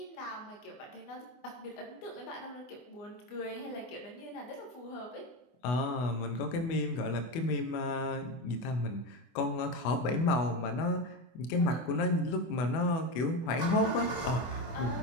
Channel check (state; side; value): late; right; 24 ms